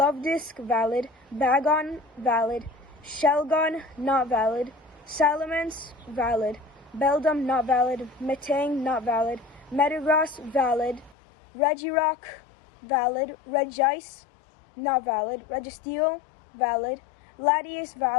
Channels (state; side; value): drops out; right; at 11.2 s